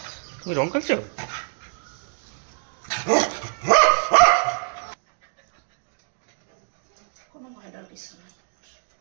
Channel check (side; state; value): left; silent; 62 dB below the other